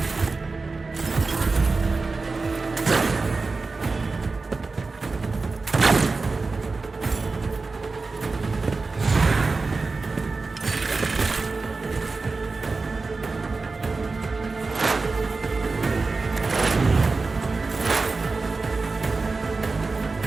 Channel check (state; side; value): quieter; left; 3.9 dB